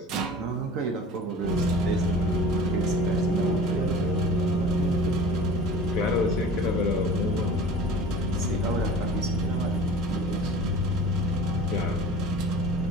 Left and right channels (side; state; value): both; normal; correlation 0.41